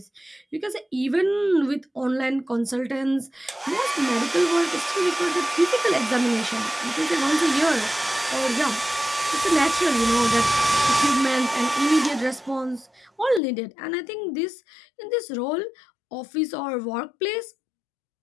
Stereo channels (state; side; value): drops out; right; at 13.4 s